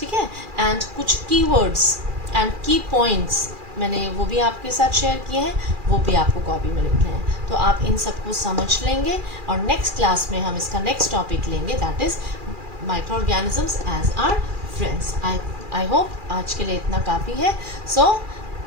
है, एंड कुछ कीवर्ड्स एंड की पॉइंट्स मैंने वो भी आपके साथ शेयर किए हैं, वो भी आपको कॉपी में लिखने हैं। तो आप इन सबको समझ लेंगे, और नेक्स्ट क्लास में हम इसका नेक्स्ट टॉपिक लेंगे, that is micro organisms as our friends. I hope आज के लिए इतना काफ़ी है। So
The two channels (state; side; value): late; left; 2.4 ms